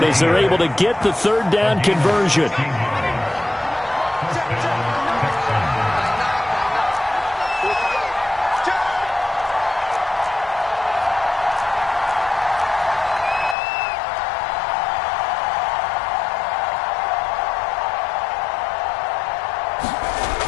as they're able to get the third down conversion.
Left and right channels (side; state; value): right; drops out; at 13.6 s